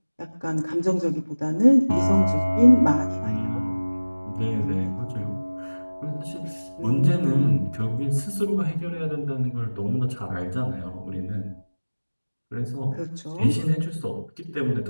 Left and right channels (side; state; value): both; inverted; correlation -1.00